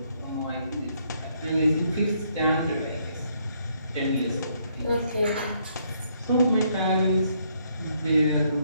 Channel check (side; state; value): both; inverted; correlation -0.71